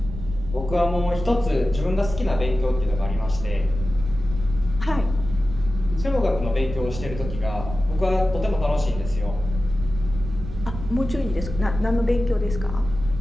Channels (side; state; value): right; noise; rumble, 9 dB below the sound